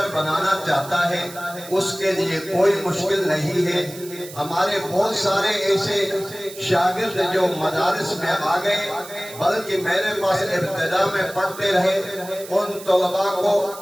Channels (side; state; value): right; noise; hiss, 15 dB below the sound